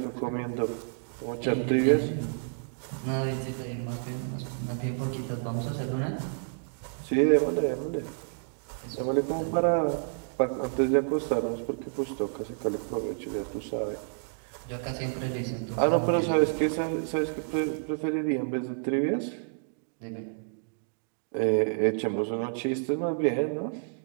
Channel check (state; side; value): silent; left; digital silence